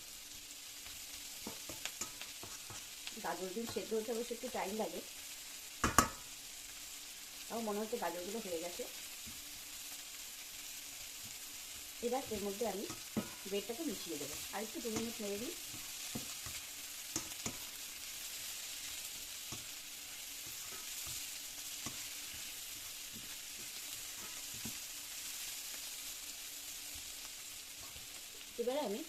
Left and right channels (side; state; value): both; identical; correlation 1.00